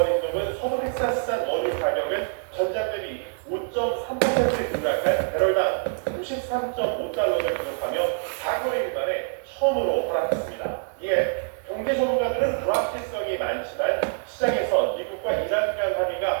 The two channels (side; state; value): left; silent; digital silence